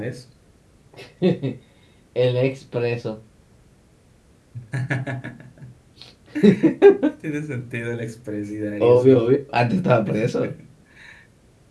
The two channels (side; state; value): both; identical; correlation 1.00